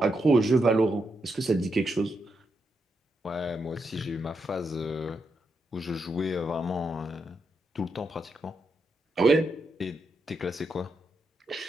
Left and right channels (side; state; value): both; normal; correlation 0.83